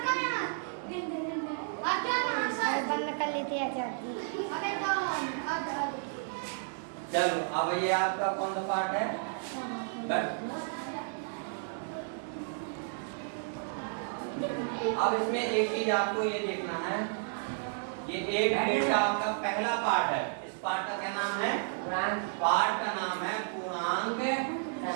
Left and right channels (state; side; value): silent; left; digital silence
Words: बंद कर लेते हैं चाची। अबे तो चलो अब ये आपका कौन सा पार्ट है? बैठ। अब इसमें एक चीज आपको ये देखना है, ये एक ग्रेड का आपका पहला पार्ट है। इस पार्ट का क्या नाम है? पार्ट का नाम है पूर्णांक